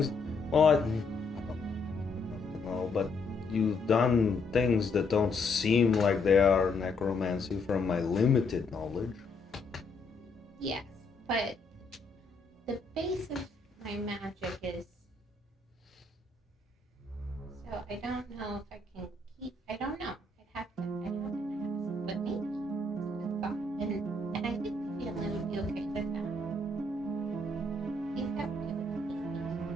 Well, I don't know, but you've done things that don't seem like they are necromancy from my limited knowledge. Yes, but the base of my magic is. So I don't know if I can keep. I don't know. I'd have to ask, but maybe it's a good thought, and I think the family would be okay with that. I think that would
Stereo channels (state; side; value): quieter; right; 3.3 dB